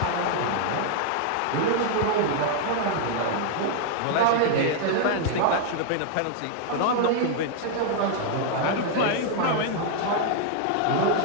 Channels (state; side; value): different; both; correlation 0.00